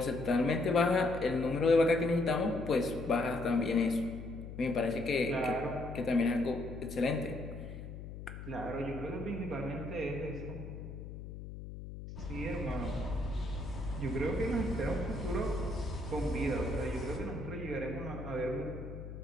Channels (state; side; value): noise; left; hum, 10 dB below the sound